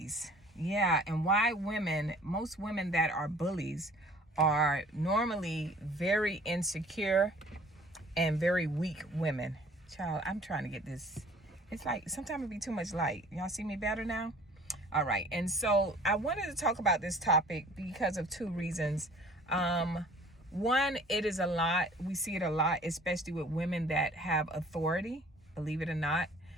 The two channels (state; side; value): normal; both; correlation 0.51